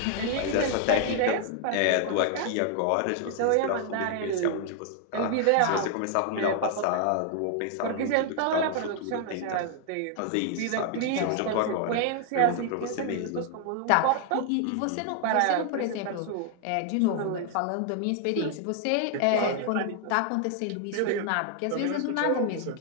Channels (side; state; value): both; different; correlation 0.00